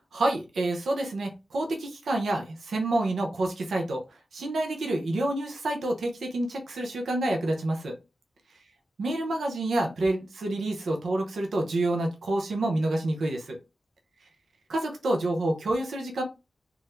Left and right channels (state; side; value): normal; both; correlation 0.91